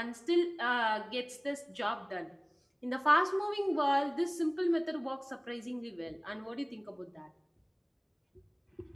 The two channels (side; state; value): both; identical; correlation 1.00